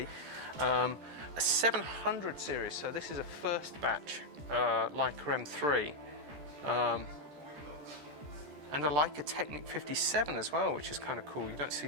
A 700 series, so this is a first batch Leica M3. And a Leica Technic 57 as well, which is kind of cool. You don't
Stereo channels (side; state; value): left; late; 14 ms